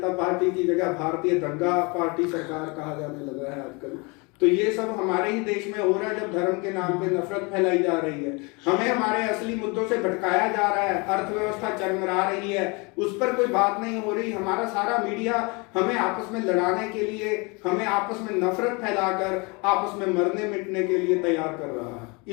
पार्टी की जगह भारतीय दंगा पार्टी सरकार कहा जाने लगा है आजकल, तो ये सब हमारे ही देश में हो रहा है। जब धर्म के नाम पे नफरत फैलाई जा रही है, हमें हमारे असली मुद्दों से भटकाया जा रहा है, अर्थव्यवस्था चरमरा रही है, उस पर कोई बात नहीं हो रही। हमारा सारा मीडिया हमें आपस में लड़ाने के लिए, हमें आपस में नफरत फैलाकर आपस में मरने मिटने के लिए तैयार कर रहा है।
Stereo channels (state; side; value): quieter; right; 29.1 dB